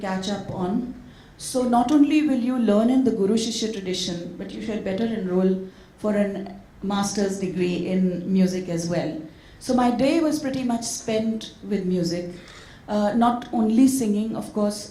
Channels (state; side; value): identical; both; correlation 1.00